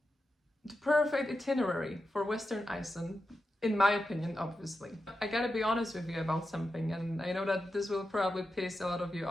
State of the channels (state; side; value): normal; both; correlation 0.90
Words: itinerary for Western Iceland, in my opinion, obviously. I gotta be honest with you about something, and I know that this will probably piss a lot of you